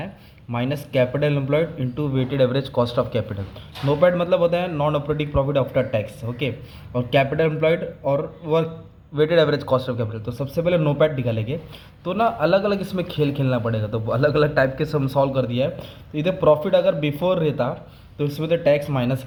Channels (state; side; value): identical; both; correlation 1.00